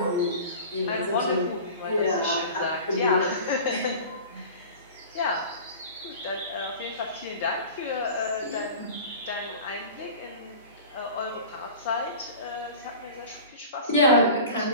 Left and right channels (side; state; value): both; inverted; correlation -0.37